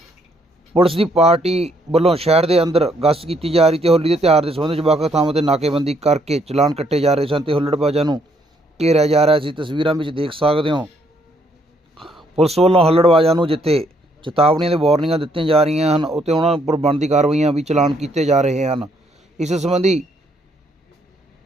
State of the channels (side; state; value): both; normal; correlation 0.70